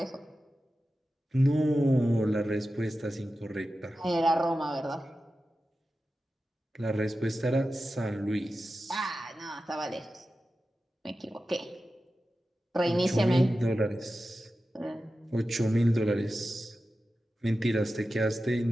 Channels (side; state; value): both; normal; correlation 0.93